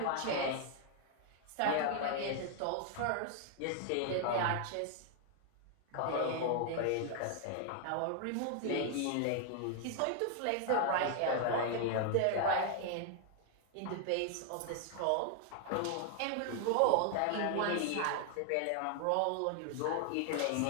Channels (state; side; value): different; both; correlation 0.00